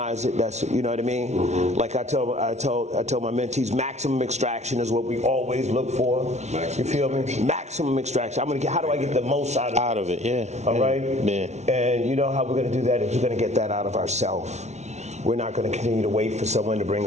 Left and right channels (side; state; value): left; late; 0.32 ms